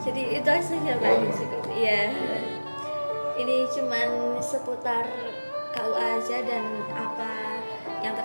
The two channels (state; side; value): inverted; both; correlation -1.00